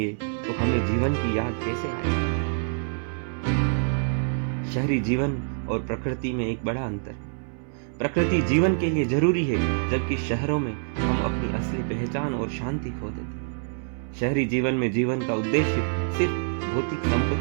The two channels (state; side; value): silent; left; 61 dB below the other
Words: तो हमें जीवन की याद कैसे आएगी? शहरी जीवन और प्रकृति में एक बड़ा अंतर है। प्रकृति जीवन के लिए जरूरी है, जबकि शहरों में हम अपनी असली पहचान और शांति खो देते हैं। शहरी जीवन में जीवन का उद्देश्य सिर्फ भौतिक